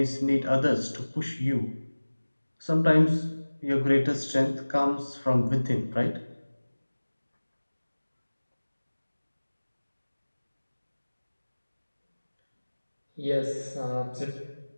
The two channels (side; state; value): both; inverted; correlation -1.00